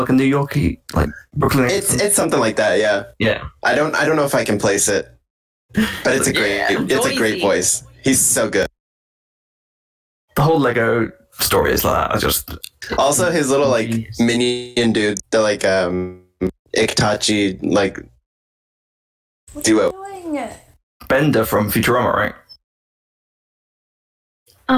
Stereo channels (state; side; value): identical; both; correlation 1.00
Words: a New Yorkie, like Brooklyn accent? It's something like that. Yeah, Yeah. I don't know if I can place it, but it's a great Noisy. voice. He's so good. The whole Lego story is like that. I just Also, his little like minion dude, the like Iktachi like duo. Bender from Futurama, right?